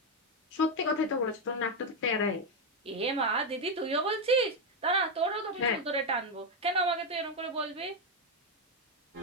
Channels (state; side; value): normal; both; correlation 0.05